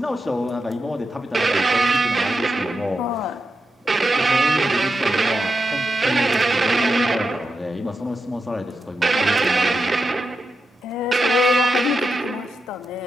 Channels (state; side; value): normal; both; correlation 0.88